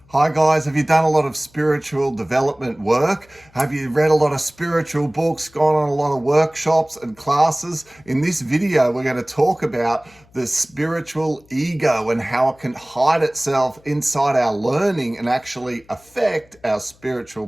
Hi guys, have you done a lot of spiritual development work? Have you read a lot of spiritual books, gone on a lot of workshops and classes? In this video, we're going to talk about the spiritual ego and how it can hide itself inside our learning and actually affect our spiritual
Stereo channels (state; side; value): noise; left; hum, 30 dB below the sound